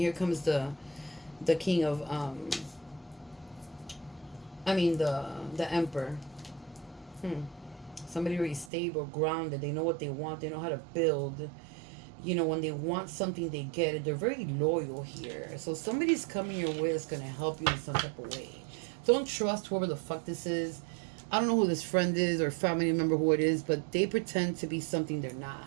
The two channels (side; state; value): left; drops out; at 8.7 s